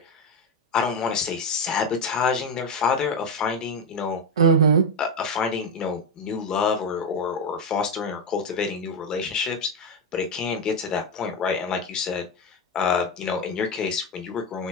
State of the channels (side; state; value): both; normal; correlation 0.10